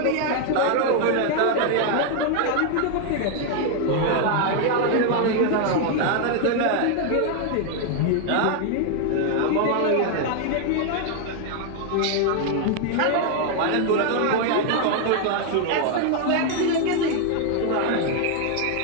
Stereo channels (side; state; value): both; different; correlation 0.00